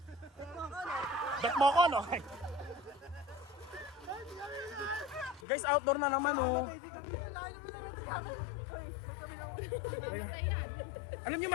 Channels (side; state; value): right; drops out; at 5.5 s